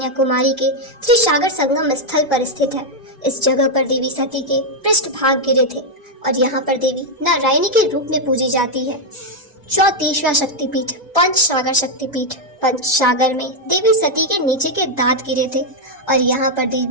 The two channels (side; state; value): both; normal; correlation 0.00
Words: के त्रिसागर संगम स्थल पर स्थित है। इस जगह पर देवी सती के पृष्ठभाग गिरे थे और यहाँ पर देवी नारायणी के रूप में पूजी जाती है। 34वां शक्तिपीठ पंचसागर शक्तिपीठ। पंचसागर में देवी सती के नीचे के दांत गिरे थे और यहाँ पर